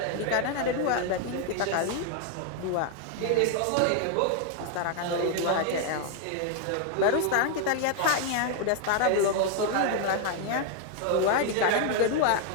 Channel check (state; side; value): different; both; correlation 0.00